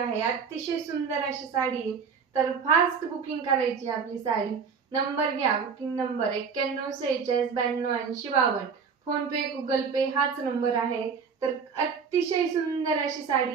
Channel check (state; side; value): quieter; left; 5.9 dB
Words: अतिशय सुंदर अशी साडी आहे। तर फास्ट बुकिंग करायची आपली साडी। नंबर घ्या, बुकिंग नंबर 9146928052। फोन पे गुगल पे हाच नंबर आहे। तर अतिशय सुंदर अशी